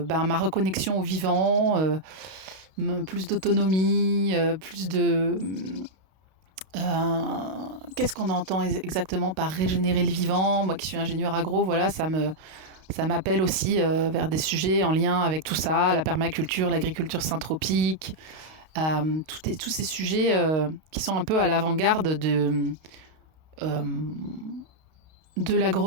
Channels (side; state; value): left; late; 32 ms